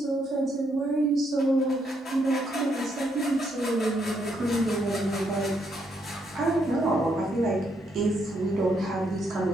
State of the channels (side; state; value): both; normal; correlation 0.75